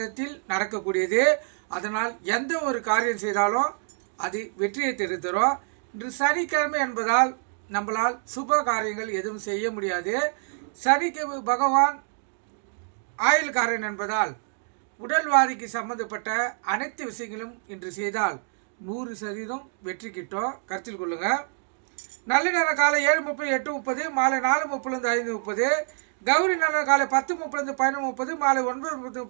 நடக்கக்கூடியது. அதனால் எந்த ஒரு காரியம் செய்தாலும் அது வெற்றியை தரும். இன்று சனிக்கிழமை என்பதால் நம்மளால் சுப காரியங்கள் எதுவும் செய்ய முடியாது. சனிக்கு பகவான் ஆயுள்காரன் என்பதால் உடல்வாதிக்கு சம்பந்தப்பட்ட அனைத்து விஷயங்களும் இன்று செய்தால் 100% வெற்றி கிட்டும். கருத்தில் கொள்ளுங்க. நல்ல நேரம் காலை 7:30, 8:30, மாலை 4:30, 5:30. கௌரி நல்ல காலை 10:30, 11:30, மாலை 9:30,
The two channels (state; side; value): silent; left; 57 dB below the other